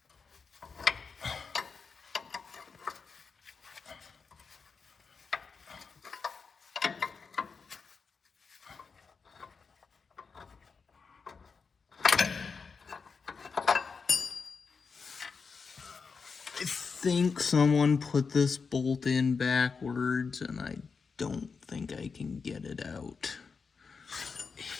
I think someone put this bolt in backwards, and I don't think I can get it out.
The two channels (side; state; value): right; quieter; 5.2 dB